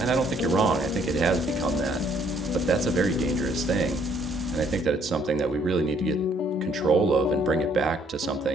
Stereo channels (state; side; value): normal; both; correlation 0.65